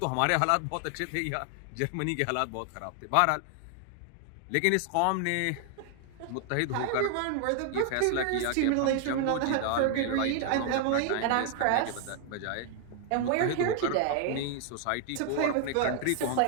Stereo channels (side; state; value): both; different; correlation 0.00